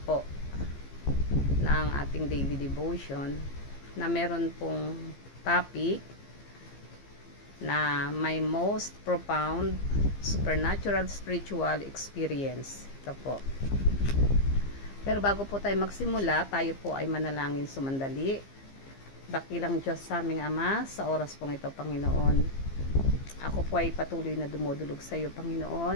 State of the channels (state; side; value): late; right; 15 ms